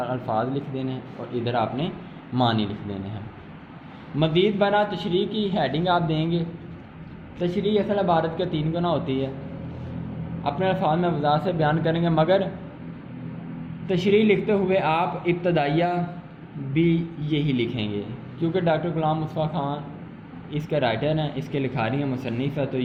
الفاظ لکھ دینے ہیں اور ادھر آپ نے معنی لکھ دینے ہیں۔ مزید برآں تشریح کی ہیڈنگ آپ دیں گے۔ تشریح اصل عبارت کے 3 گنا ہوتی ہے، اپنے الفاظ میں وضاحت سے بیان کریں گے، مگر تشریح لکھتے ہوئے آپ ابتدائیہ بھی یہی لکھیں گے، کیونکہ ڈاکٹر غلام مصطفیٰ خان اس کے رائٹر ہیں، اس کے لکھاری ہیں، مصنف ہے، تو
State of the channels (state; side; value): identical; both; correlation 1.00